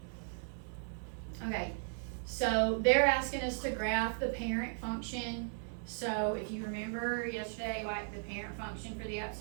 many. Okay, so they're asking us to graph the parent function. So if you remember yesterday, like the parent function for the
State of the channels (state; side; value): silent; left; digital silence